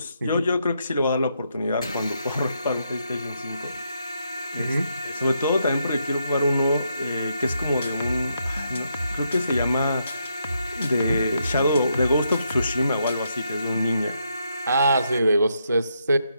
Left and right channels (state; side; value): inverted; both; correlation -0.79